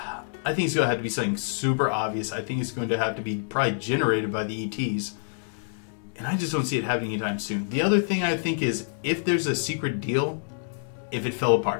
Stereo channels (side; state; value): right; silent; 59 dB below the other